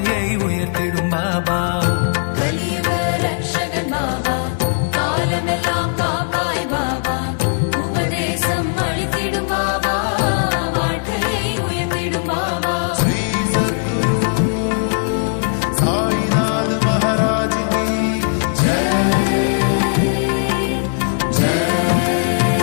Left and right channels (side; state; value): right; silent; digital silence